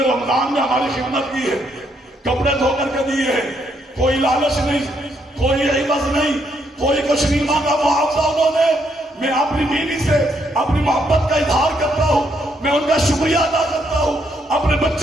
رمضان میں ہماری خدمت کی ہے، کپڑے دھو کر کے دیے ہیں، کوئی لالچ نہیں، کوئی عوض نہیں، کوئی کچھ نہیں مانگا، معاوضہ انہوں نے۔ میں اپنی بیوی سے اپنی محبت کا اظہار کرتا ہوں، میں ان کا شکریہ ادا کرتا ہوں، اپنے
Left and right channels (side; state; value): both; normal; correlation 0.74